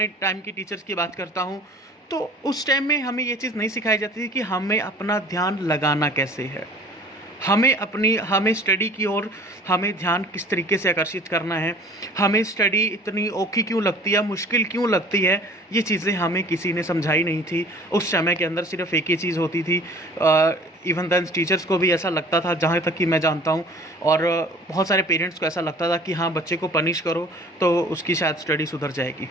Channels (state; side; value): normal; both; correlation 0.48